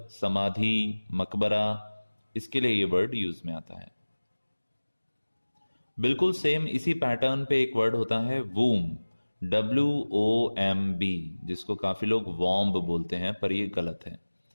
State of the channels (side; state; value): both; inverted; correlation -1.00